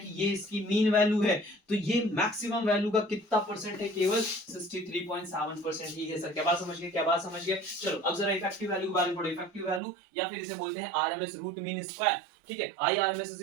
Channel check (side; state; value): left; drops out; at 9.8 s